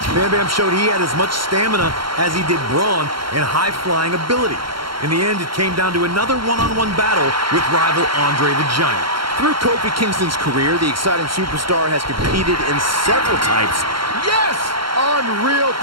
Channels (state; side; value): late; left; 0.73 ms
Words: Bam Bam showed he had as much stamina as he did brawn and high-flying ability. In the end, it came down to another one-on-one battle with rival Andre the Giant. Through Kofi Kingston's career, the exciting superstar has competed in several types. Yes! Unreal